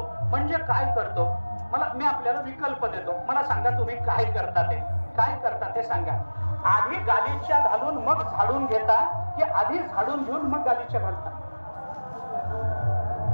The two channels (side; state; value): both; inverted; correlation -1.00